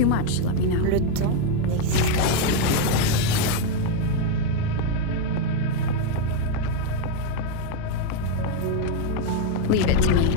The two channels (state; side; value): different; both; correlation 0.01